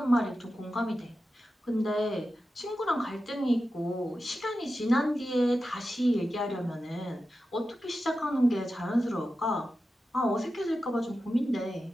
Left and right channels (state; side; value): normal; both; correlation 0.92